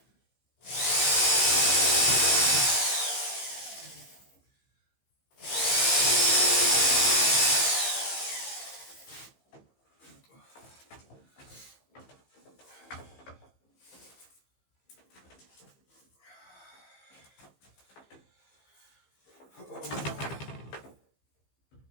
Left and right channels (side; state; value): right; late; 15 ms